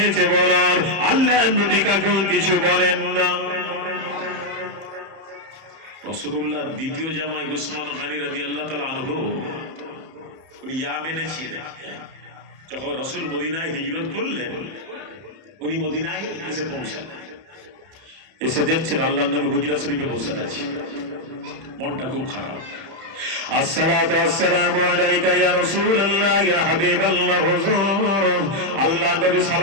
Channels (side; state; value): left; late; 31 ms